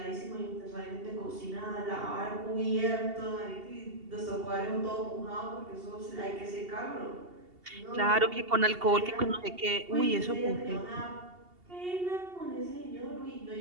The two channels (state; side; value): late; left; 2.8 ms